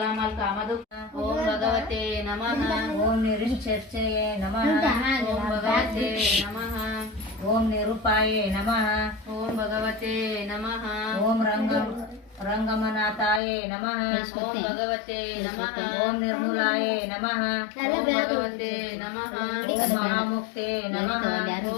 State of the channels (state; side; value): drops out; right; at 13.4 s